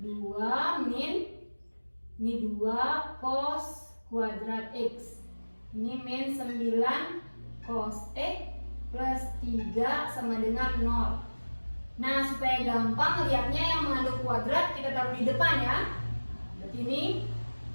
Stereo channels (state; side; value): inverted; both; correlation -1.00